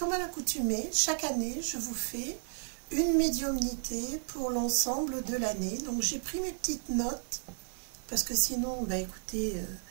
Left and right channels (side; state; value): left; silent; digital silence